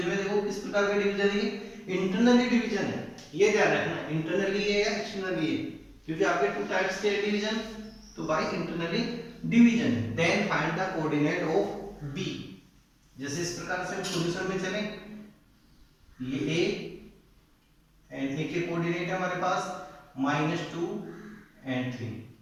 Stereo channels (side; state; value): both; identical; correlation 1.00